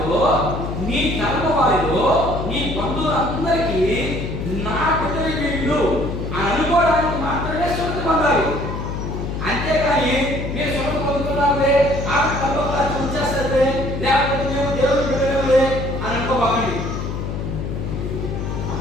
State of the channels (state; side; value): noise; left; hum, 4 dB below the sound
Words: నీ తరము వారిలో, నీ బంధువులందరికీ నా బిడ్డలు వీళ్ళు అని అనుకోవడానికి మాత్రమే సున్నతి పొందాలి. అంతేకాని మీరు సున్నతి పొందుతున్నారే ఆ తల్లోలా చూసేస్తే లేకపోతే మేము దేవుడు బిడ్డలే అని అనుకోబాకండి.